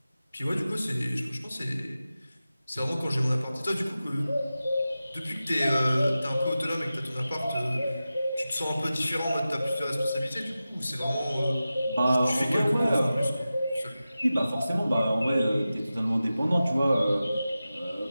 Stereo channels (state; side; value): inverted; both; correlation -0.94